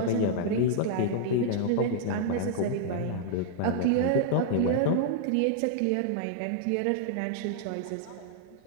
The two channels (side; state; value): both; different; correlation -0.01